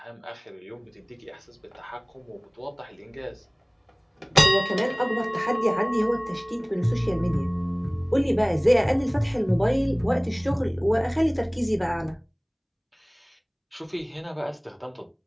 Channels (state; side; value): identical; both; correlation 1.00